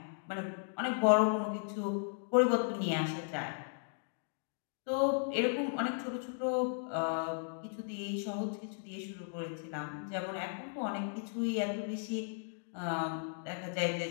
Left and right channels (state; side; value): silent; right; digital silence